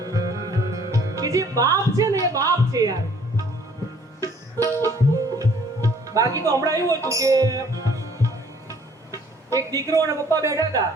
કે જે બાપ છે ને એ બાપ છે યાર. બાકી તો હમણાં એવું હતું કે એક દીકરો અને પપ્પા બેઠા હતા,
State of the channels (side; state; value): both; normal; correlation 0.58